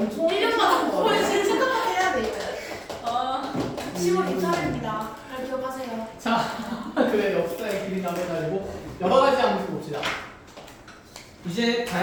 거의 제일 생각하게 해야 돼. 10월 24일입니다. 잘 기억하세요. 자, 그래 역사의 길이 남은 날이고 여러 가지 함수 봅시다. 이제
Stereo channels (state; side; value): identical; both; correlation 1.00